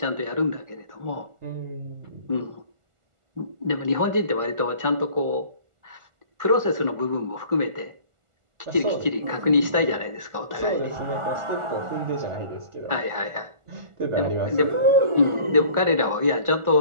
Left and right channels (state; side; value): late; left; 1.4 ms